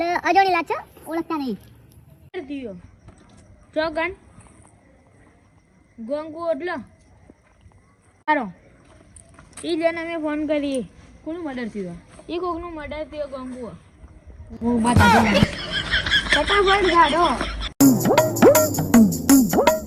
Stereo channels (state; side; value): identical; both; correlation 1.00